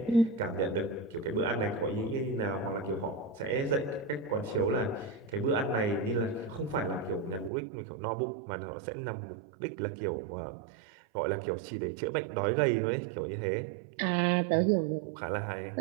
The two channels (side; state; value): left; drops out; at 7.5 s